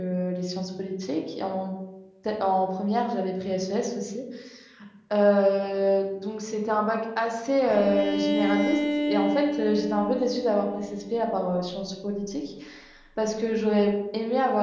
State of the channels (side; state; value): both; identical; correlation 1.00